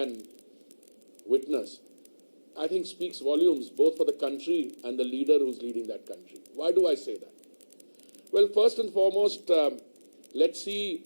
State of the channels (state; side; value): inverted; both; correlation -1.00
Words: witness, I think speaks volumes both for the country and the leader who's leading that country. Why do I say that? Well, first and foremost, let's see